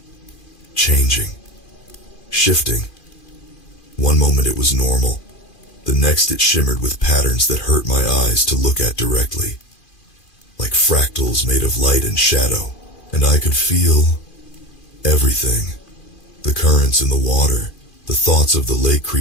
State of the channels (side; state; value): right; late; 2.4 ms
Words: changing, shifting. One moment it was normal. The next it shimmered with patterns that hurt my eyes to look at directly. Like fractals made of light and shadow. And I could feel everything. The currents in the water, the thoughts of the lake